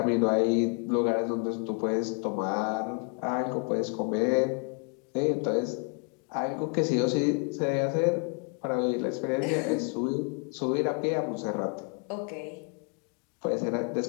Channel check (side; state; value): right; quieter; 36.3 dB